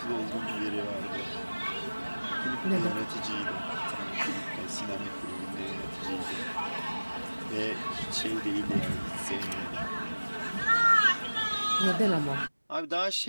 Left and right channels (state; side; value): inverted; both; correlation -1.00